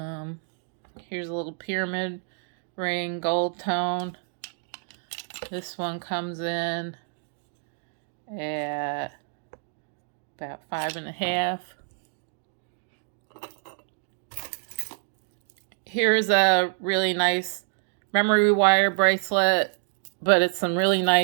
Here's a little pyramid ring, gold tone. This one comes in at about 5.5. Here's a really nice memory wire bracelet, but it's some really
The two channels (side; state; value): left; silent; digital silence